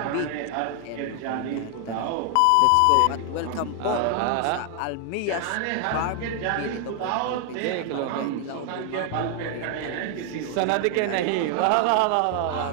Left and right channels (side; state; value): both; different; correlation 0.00